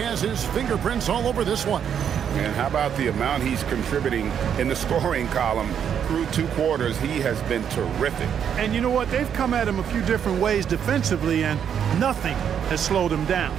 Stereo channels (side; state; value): left; quieter; 8.4 dB